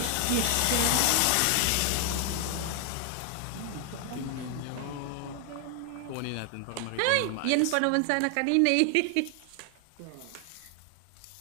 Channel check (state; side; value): different; both; correlation 0.00